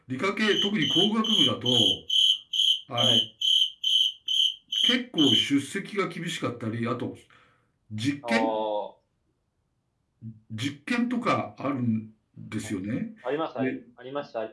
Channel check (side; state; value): both; identical; correlation 1.00